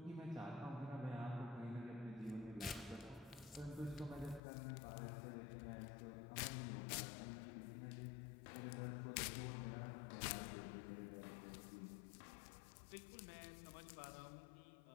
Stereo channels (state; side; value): drops out; right; at 4.4 s